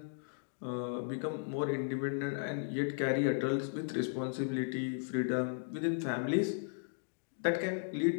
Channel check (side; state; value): right; silent; digital silence